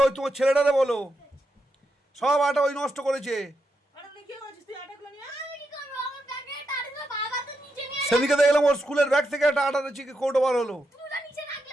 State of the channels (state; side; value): normal; both; correlation 0.84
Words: ওই তোমার ছেলেটারে বলো, সব আটা ওই নষ্ট করেছে। আটা নিয়ে কি করেছিস তুই? আটাগুলো নিয়ে সেদিকে দেখলাম ওর স্কুলের ব্যাগ থেকে একটা আটার চিকে কৌটো বার হলো।